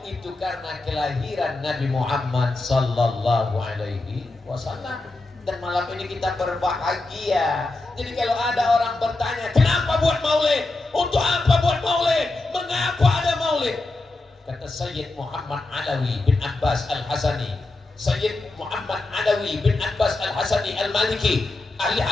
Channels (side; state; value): right; quieter; 3.1 dB